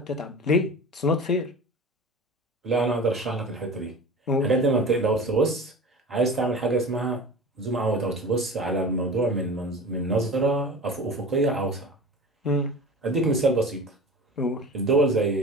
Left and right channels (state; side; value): normal; both; correlation 0.35